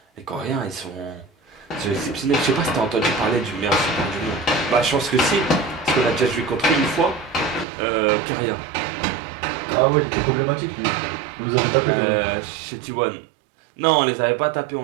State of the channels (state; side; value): drops out; left; at 7.7 s